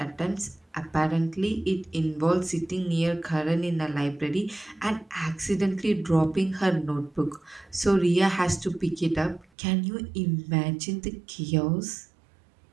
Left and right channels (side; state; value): left; drops out; at 9.5 s